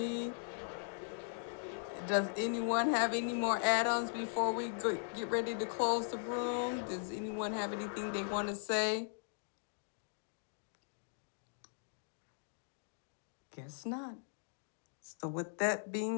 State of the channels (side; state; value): right; silent; digital silence